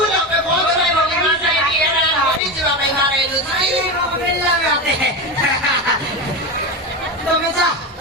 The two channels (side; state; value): both; normal; correlation 0.19